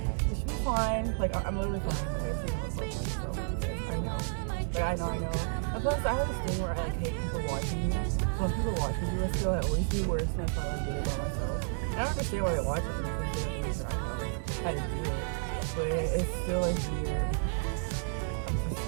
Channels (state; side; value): silent; left; digital silence